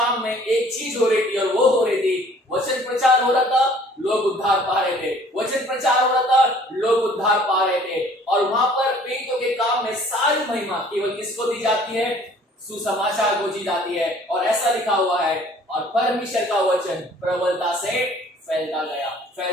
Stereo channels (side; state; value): both; normal; correlation 0.55